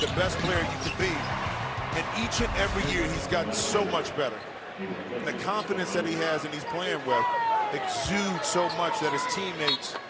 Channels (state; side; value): identical; both; correlation 1.00